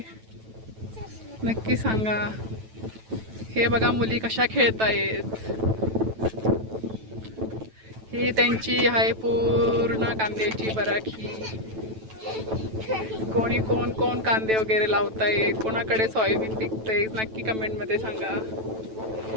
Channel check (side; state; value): left; late; 9.1 ms